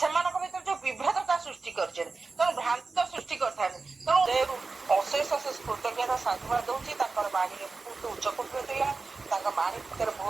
ଭିତରେ ଯୋଉ ବିଭେଦତା ସୃଷ୍ଟି କରିଛନ୍ତି, ତେଣୁ ଭ୍ରାନ୍ତ ସୃଷ୍ଟି କରିଥାନ୍ତି। ତେଣୁ ଅଶେଷ ଅଶେଷ କୃତଜ୍ଞତା ସାଧୁବାଦ ଦଉଛି। ତାଙ୍କର ବାଣୀରେ ବହୁତ ଉଚ୍ଚକୋଟୀର ଥିଲା, ତାଙ୍କ ବାଣୀ ଭିତରେ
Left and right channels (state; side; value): quieter; left; 4.0 dB